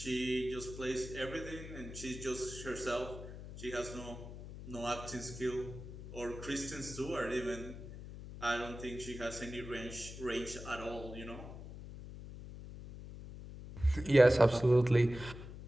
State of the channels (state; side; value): noise; left; hum, 12 dB below the sound